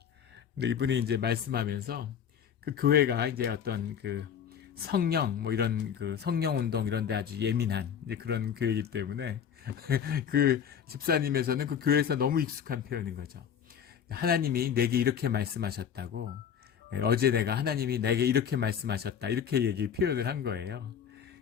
근데 이분이 이제 말씀하면서 그 교회가 이제 어떤 그 성령 뭐 이런 그 성령 운동 이런 데 아주 예민한 이제 그런 교회이기 때문에 그 집사님에서는 그 교회에서 너무 익숙한 표현인 거죠. 하나님이 내게 이렇게 말씀하셨다고, 어제 내가 하나님이 내게 이렇게 말씀하셨다, 이렇게 표현을 한 거예요.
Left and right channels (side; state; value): right; quieter; 8.2 dB